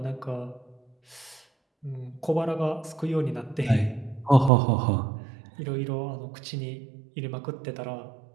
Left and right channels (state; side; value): drops out; left; at 4.5 s